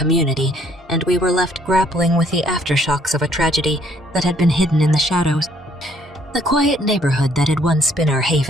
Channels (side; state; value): both; normal; correlation 0.64